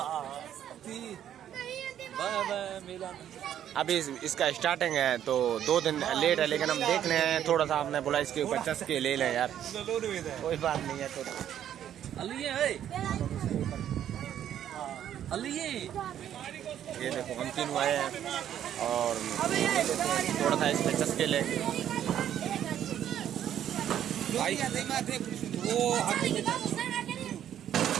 अभी इसका स्टार्टिंग है तो 2 दिन लेट है, लेकिन हम देख रहे हैं। थोड़ा सा हमने बोला इसके ऊपर चस्के ले लें यार, कोई बात नहीं है। तो ये देखो हम तीनों आए हैं और थोड़ा सा इसमें चस्के लेंगे।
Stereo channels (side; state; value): left; quieter; 10.5 dB